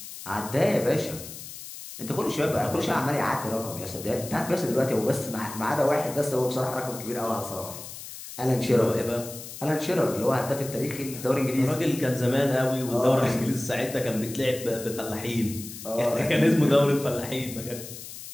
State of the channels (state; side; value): noise; left; hiss, 12 dB below the sound